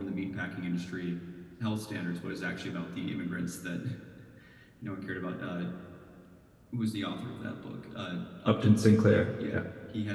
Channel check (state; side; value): identical; both; correlation 1.00